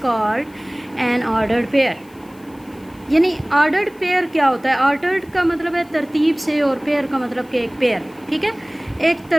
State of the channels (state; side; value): noise; left; hiss, 29 dB below the sound